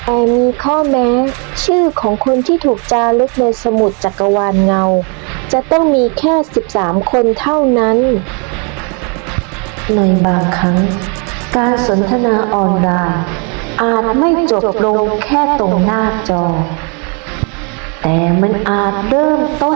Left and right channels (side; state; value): left; quieter; 35.4 dB